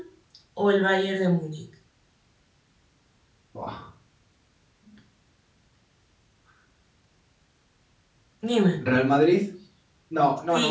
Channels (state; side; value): identical; both; correlation 1.00